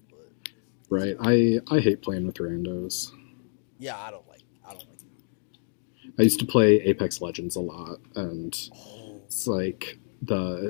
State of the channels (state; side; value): silent; right; digital silence